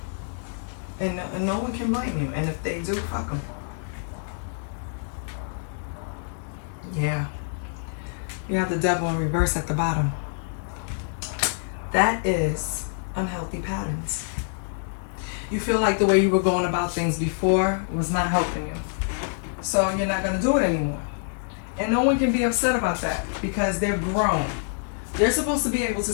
And no one can blame you. And if they do, fuck them. Yeah. You have the devil in reverse at the bottom. That is unhealthy patterns. You feel like the way you were going about things before was not helping you. So you're not going to do it anymore. And no one can be upset about that because they're grown. They're supposed to be able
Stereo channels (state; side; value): silent; right; digital silence